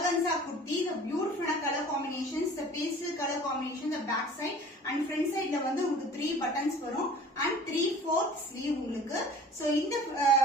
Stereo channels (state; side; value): normal; both; correlation 0.45